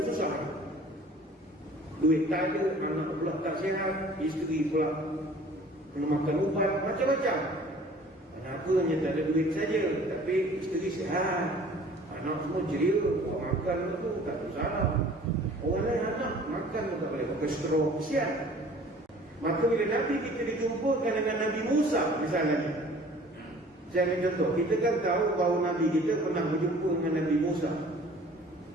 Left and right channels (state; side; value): normal; both; correlation 0.50